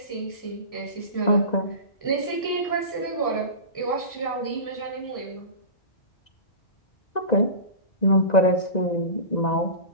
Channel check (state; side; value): late; right; 1.9 ms